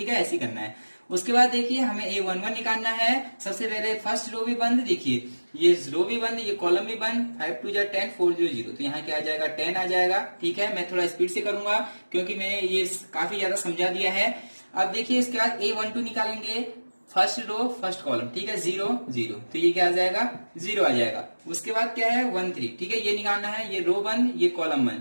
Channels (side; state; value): both; inverted; correlation -1.00